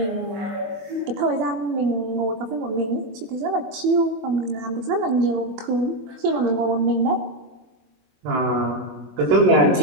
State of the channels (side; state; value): left; late; 23 ms